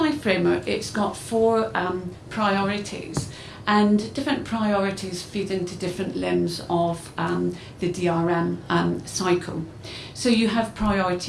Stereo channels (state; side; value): identical; both; correlation 1.00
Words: Framework, it's got 4 priorities, and different priorities feed into different limbs of the DRM cycle. So you have